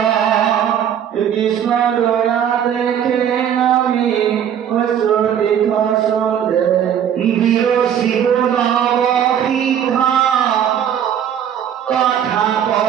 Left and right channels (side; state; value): left; quieter; 9.3 dB